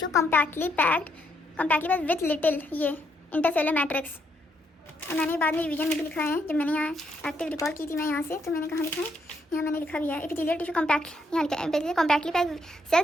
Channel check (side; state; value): both; normal; correlation 0.75